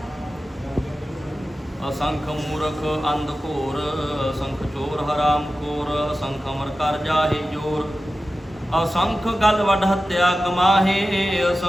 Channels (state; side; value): normal; both; correlation 0.94